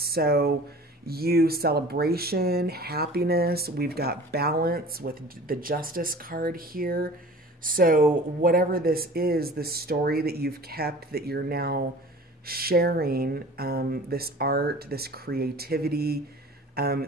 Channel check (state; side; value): normal; both; correlation 0.43